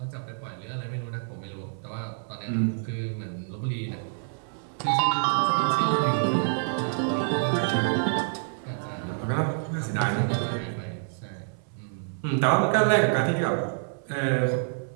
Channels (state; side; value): silent; left; digital silence